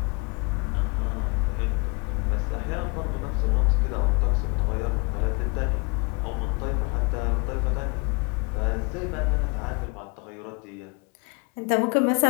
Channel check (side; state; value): right; quieter; 31.5 dB